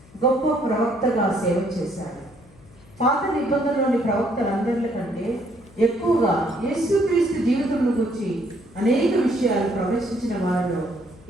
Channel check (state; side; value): noise; left; hum, 26 dB below the sound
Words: గొప్ప ప్రవక్తగా సేవ చేశాడు. పాత నిబంధనలోని ప్రవక్తలందరి కంటే ఎక్కువగా యేసుక్రీస్తు జీవితంలో గురించి అనేక విషయాలు ప్రవచించిన వారిలో